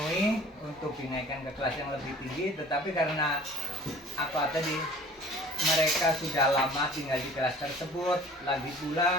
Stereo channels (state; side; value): normal; both; correlation 0.48